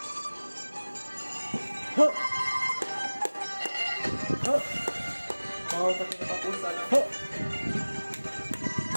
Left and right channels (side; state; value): both; inverted; correlation -1.00